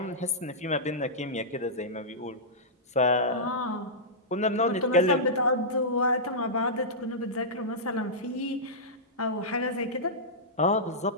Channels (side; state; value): both; normal; correlation -0.14